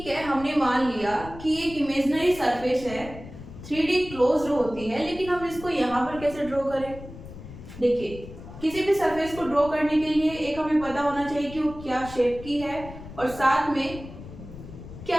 है, हमने मान लिया कि एक इमेजिनरी सरफेस है, 3D क्लोज्ड होती है, लेकिन हम इसको यहां पर कैसे ड्रॉ करें? देखिए, किसी भी सरफेस को ड्रॉ करने के लिए एक हमें पता होना चाहिए कि वो क्या शेप की है और साथ में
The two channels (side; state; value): left; noise; rumble, 14 dB below the sound